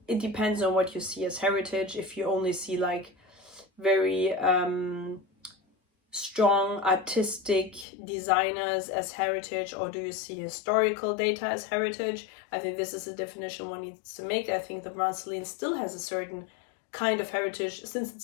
it depends on what you see as heritage. If you only see like very strong artistic designers as heritage, or do you see historical data as heritage? I think this is a definition one needs to make. I think the brand Celine still has a certain kind of heritage since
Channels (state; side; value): drops out; right; at 7.9 s